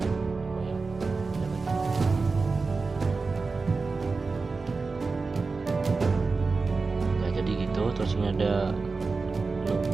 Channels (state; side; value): quieter; left; 4.1 dB